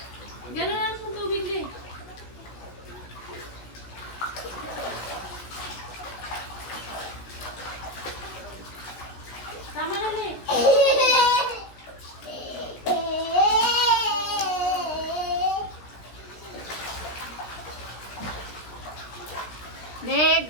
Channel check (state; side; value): late; right; 16 ms